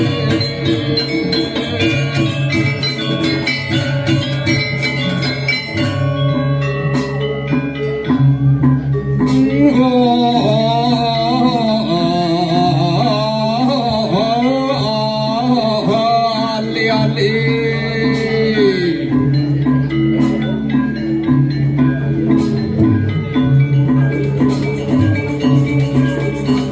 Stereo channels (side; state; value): both; identical; correlation 1.00